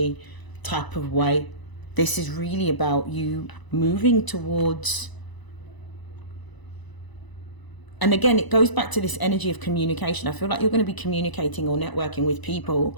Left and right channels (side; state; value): right; late; 1.0 ms